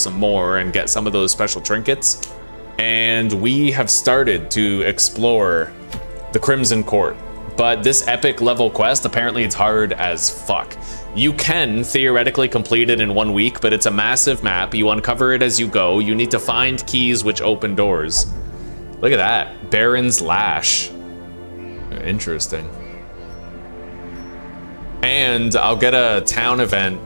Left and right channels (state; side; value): inverted; both; correlation -1.00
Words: more and get some of those special trinkets. And we have started to explore the Crimson Court. But this epic level quest, apparently it's hard as fuck. You can theoretically complete it in 1 week, but it's a massive map. You uncover it as you go. You need to find keys which open doors. Look at that. Baron's Lash. Interesting. And I'll get a town event.